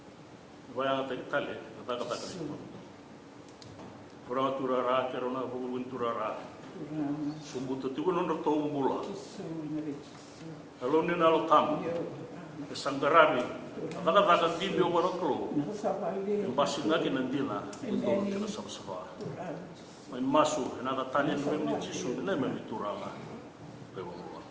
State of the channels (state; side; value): identical; both; correlation 1.00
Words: Vaya ta tale, ta ta ta. Pura tura ra kerona bugun tura ra. Sumbuto tu non ro tombula. Alone na lo tam. Sangarami. Kada kada video waroklo. Basina ki nandila. Ndo kina sabsaba. Mai masu na da tanya no me chisu na me turala.